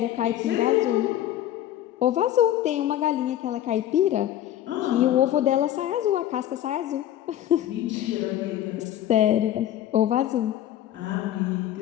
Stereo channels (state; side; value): quieter; right; 12.2 dB